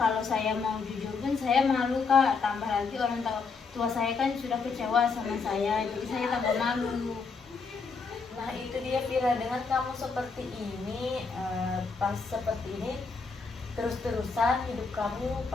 saya mau jujur pun saya malu Kak, tambah lagi orang tua saya kan sudah kecewa sama saya, jadi saya tambah malu. Nah itu dia Vira, dengan kamu seperti ini, pas seperti ini terus-terusan hidup kamu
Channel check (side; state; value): right; quieter; 4.8 dB